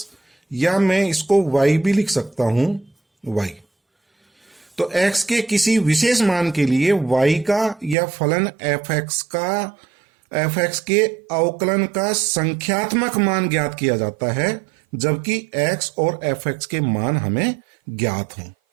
या मैं इसको y भी लिख सकता हूं, y। तो x के किसी विशेष मान के लिए y का या फलन f(x) के अवकलन का संख्यात्मक मान ज्ञात किया जाता है, जबकि x और f(x) के मान हमें ज्ञात हों।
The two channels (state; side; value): drops out; left; at 8.0 s